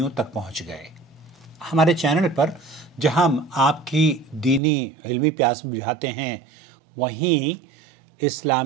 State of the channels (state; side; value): drops out; left; at 4.6 s